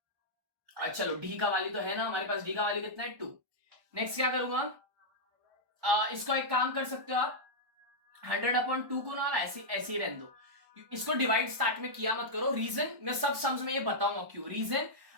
चलो d का वैल्यू तो है ना हमारे पास, d का वैल्यू कितना है 2। नेक्स्ट क्या करूंगा, इसको एक काम कर सकते हो आप, 100/2 को ना ऐसे ही रहने दो, इसको डिवाइड स्टार्ट में किया मत करो। रीजन मैं सब सम्स में ये बताऊंगा क्यों, रीजन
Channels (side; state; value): left; late; 1.1 ms